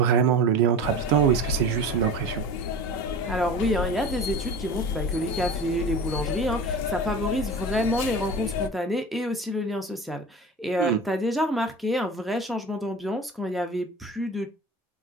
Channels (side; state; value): both; normal; correlation 0.34